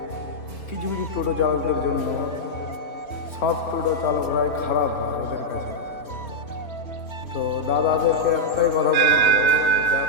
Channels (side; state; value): right; late; 3.2 ms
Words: কিছু কিছু টোটো চালকদের জন্য সব টোটো চালকরাই খারাপ হয় ওদের কাছে। তো দাদাদেরকে একটাই কথা বলবো,